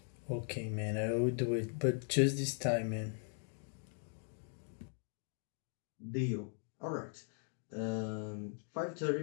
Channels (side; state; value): right; silent; 51 dB below the other